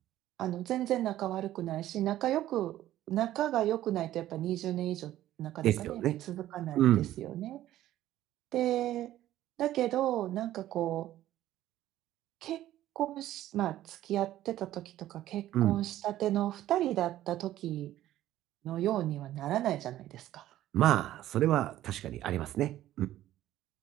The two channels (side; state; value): left; quieter; 13.7 dB